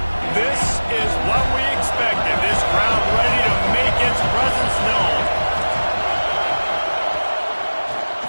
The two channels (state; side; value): inverted; both; correlation -1.00